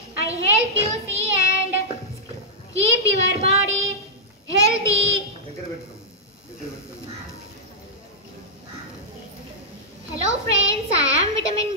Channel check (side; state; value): both; normal; correlation -0.08